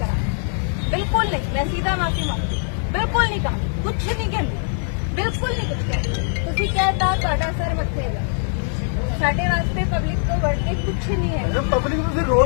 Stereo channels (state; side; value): silent; right; 64 dB below the other